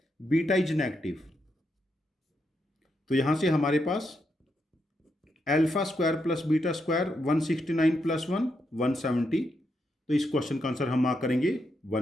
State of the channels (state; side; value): normal; both; correlation 0.82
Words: बीटा इज नेगेटिव। तो यहां से हमारे पास alpha square plus beta square 169 + 1 170, तो इस क्वेश्चन का आंसर हम मार्क करेंगे